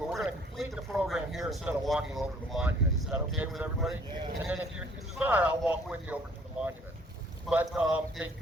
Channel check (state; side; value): normal; both; correlation 0.59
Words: we're going to complete the program here instead of walking over to the monument. Is that okay with everybody? Yeah. And then if you desire, I'll walk with you over to the monument. But they